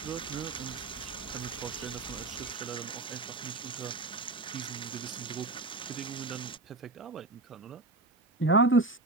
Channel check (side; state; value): left; quieter; 3.1 dB